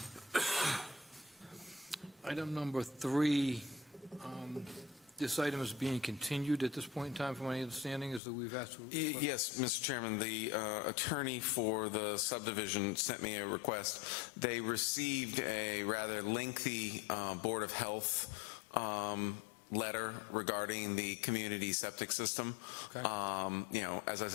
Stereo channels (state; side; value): drops out; right; at 8.2 s